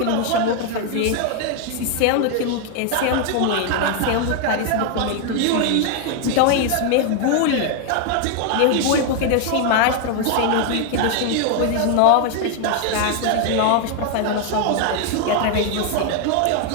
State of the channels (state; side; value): different; both; correlation 0.01